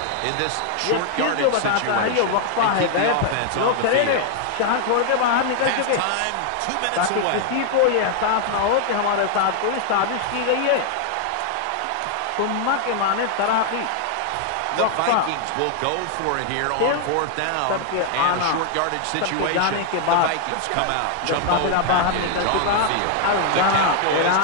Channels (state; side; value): different; both; correlation 0.00